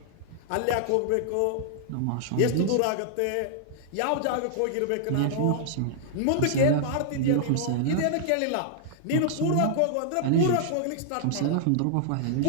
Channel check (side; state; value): both; different; correlation -0.01